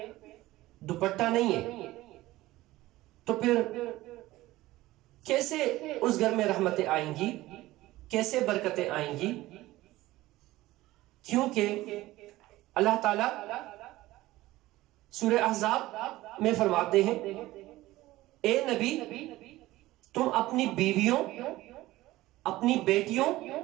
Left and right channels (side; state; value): left; quieter; 17.4 dB